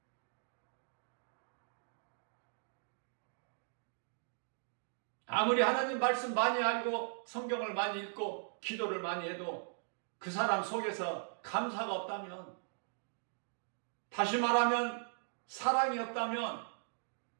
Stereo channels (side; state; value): left; silent; digital silence